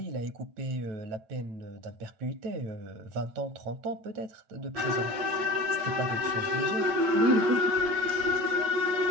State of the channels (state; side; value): late; left; 8.9 ms